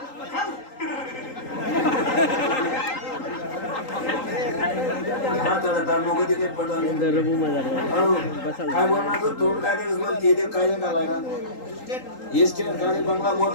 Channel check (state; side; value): late; right; 3.8 ms